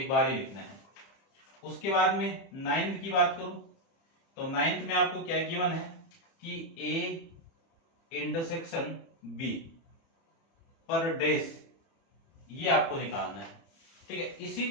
बार ही लिखना है। उसके बाद में 9th की बात करूं तो 9th में आपको क्या गिवन है कि ए इंटरसेक्शन बी पर डेस, ये आपको निकालना है, ठीक है। इसी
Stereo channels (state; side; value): late; right; 30 ms